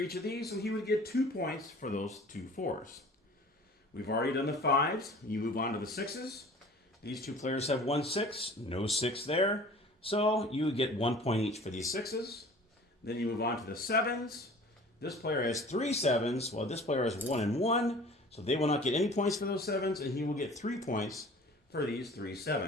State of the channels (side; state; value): both; normal; correlation 0.46